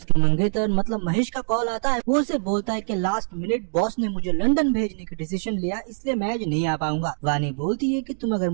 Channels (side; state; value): left; silent; digital silence